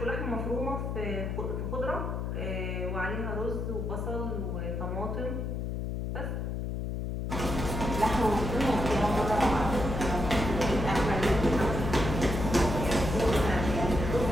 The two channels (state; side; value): noise; left; hum, 3 dB below the sound